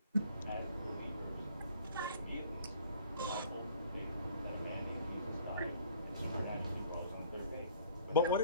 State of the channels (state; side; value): inverted; both; correlation -0.55